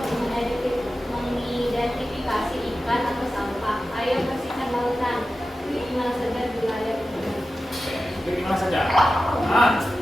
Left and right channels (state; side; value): normal; both; correlation 0.93